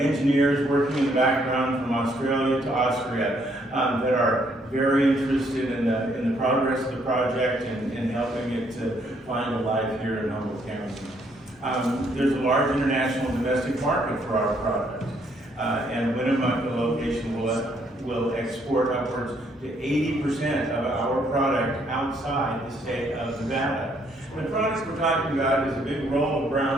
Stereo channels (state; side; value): normal; both; correlation 0.69